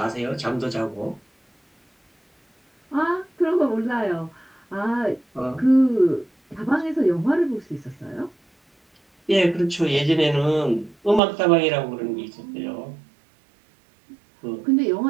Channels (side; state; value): left; drops out; at 11.2 s